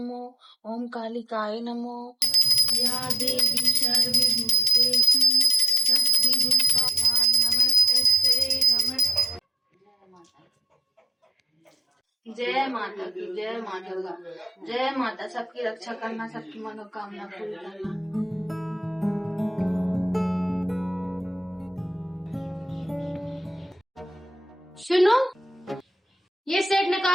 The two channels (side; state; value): both; normal; correlation 0.79